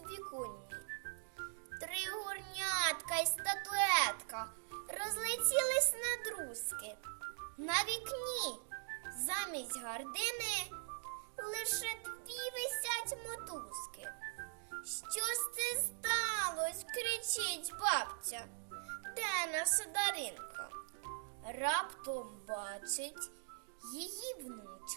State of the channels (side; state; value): left; silent; digital silence